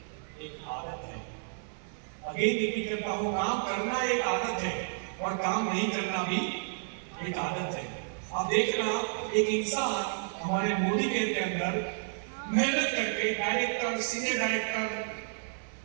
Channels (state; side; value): silent; left; 57 dB below the other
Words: एक आदत है। अगेन रिपीट करता हूं, काम करना एक आदत है और काम नहीं करना भी एक आदत है। आप देखना, एक इंसान हमारे मोदी केयर के अंदर मेहनत करके director, senior director,